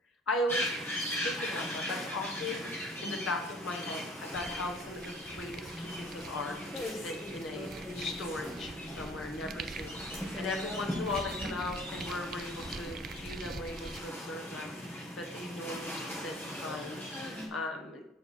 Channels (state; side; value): normal; both; correlation 0.50